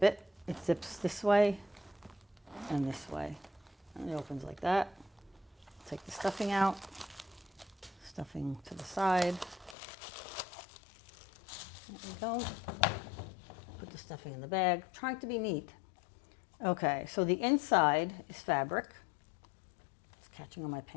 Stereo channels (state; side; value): drops out; right; at 9.8 s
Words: it. It zips this way and this way. And it opens like that. Take the stuffing out. Stuffing to the side. There we go. Put the stuffing in the bag. I'm trying to be neat. Okay, so the inside is fabric. It's catching on my